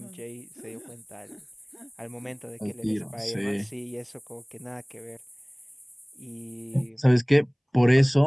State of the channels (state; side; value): identical; both; correlation 1.00